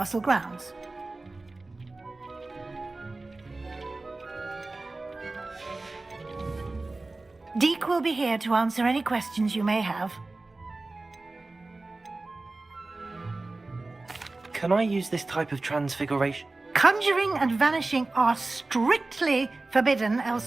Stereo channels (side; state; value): left; quieter; 3.2 dB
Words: grounds. Deke will be here to answer any questions you may have. Can I use this type of transfiguration? Conjuring and vanishing are strictly forbidden